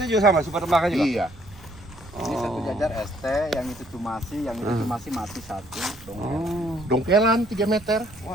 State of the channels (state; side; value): noise; right; rumble, 21 dB below the sound